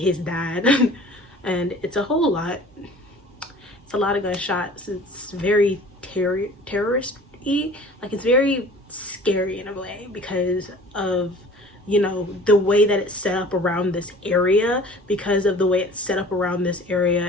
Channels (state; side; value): normal; both; correlation 0.46